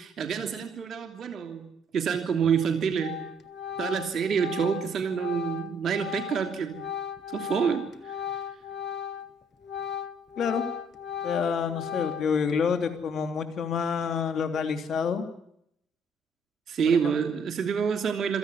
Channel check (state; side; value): normal; both; correlation 0.64